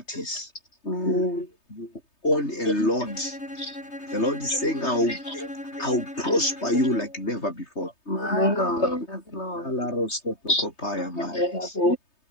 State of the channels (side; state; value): right; late; 3.3 ms